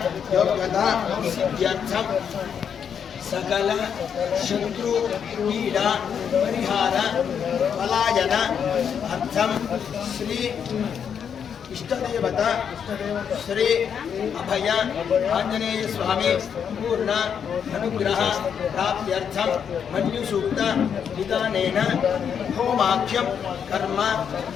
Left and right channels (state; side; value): quieter; right; 7.6 dB